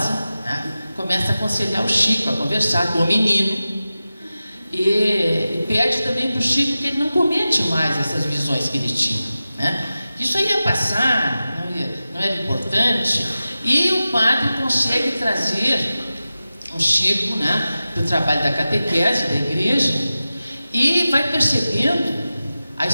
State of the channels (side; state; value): both; inverted; correlation -0.94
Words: né, começa a aconselhar o Chico, a conversar com o menino, e pede também para o Chico que ele não comente mais essas visões que ele tinha, né? Isso aí ia passar, não era importante. E o padre consegue trazer o Chico, né, para o trabalho da catequese da igreja, e vai percebendo a